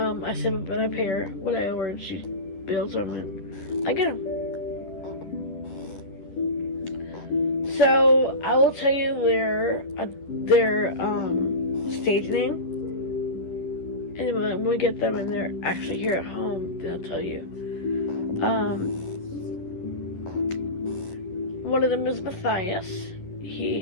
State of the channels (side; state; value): right; late; 11 ms